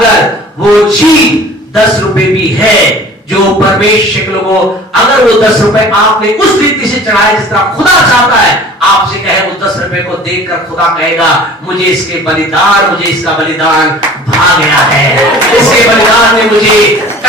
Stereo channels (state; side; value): normal; both; correlation 0.46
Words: वो चीज 10 रुपए भी है जो परमेश्वर के लोगों, अगर वो 10 रुपए आपने उस रीति से चढ़ाए जिस तरह खुदा चाहता है, आपसे कहे उस 10 रुपए को देखकर खुदा कहेगा मुझे इसके बलिदान, मुझे इसका बलिदान भा गया है, इसके बलिदान ने मुझे